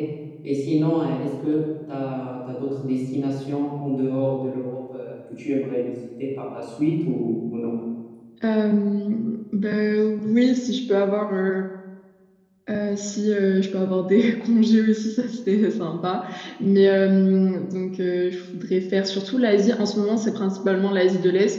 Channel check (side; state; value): both; identical; correlation 1.00